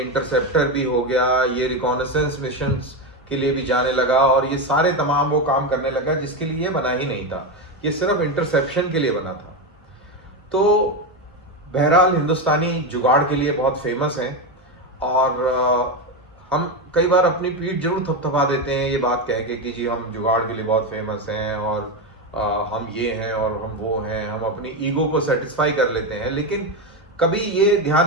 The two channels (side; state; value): both; normal; correlation 0.12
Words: इंटरसेप्टर भी हो गया, ये रिकॉनेसेंस मिशंस के लिए भी जाने लगा, और ये सारे तमाम वो काम करने लगा जिसके लिए ये बना ही नहीं था। ये सिर्फ इंटरसेप्शन के लिए बना था। तो बहरहाल हिंदुस्तानी जुगाड़ के लिए बहुत फेमस हैं, और हम कई बार अपनी पीठ जरूर थपथपा देते हैं ये बात कह के कि जी हम जुगाड़ के लिए बहुत फेमस हैं और हम ये हैं और हम वो हैं, हम अपनी ईगो को सेटिस्फाई कर लेते हैं, लेकिन कभी ये